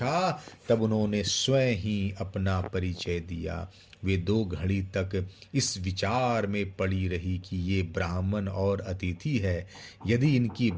तब उन्होंने स्वयं ही अपना परिचय दिया। वे 2 घड़ी तक इस विचार में पड़ी रही कि ये ब्राह्मण और अतिथि है, यदि इनकी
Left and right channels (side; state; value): both; identical; correlation 1.00